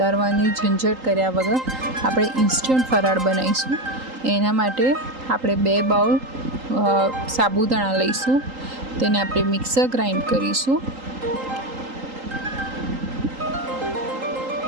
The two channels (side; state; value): left; late; 3.8 ms